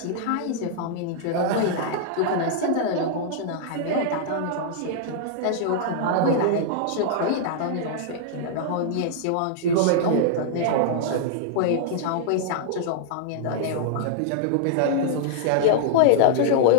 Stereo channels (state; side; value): different; both; correlation -0.01